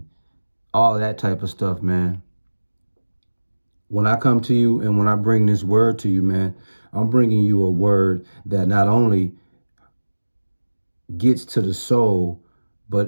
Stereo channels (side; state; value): both; inverted; correlation -1.00